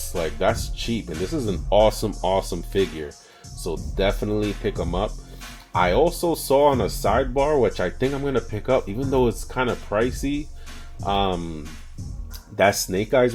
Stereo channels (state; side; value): identical; both; correlation 1.00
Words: like that's cheap, and this is an awesome figure, so definitely pick him up. I also saw on a sidebar, which I think I'm going to pick up, even though it's kind of pricey, that Snake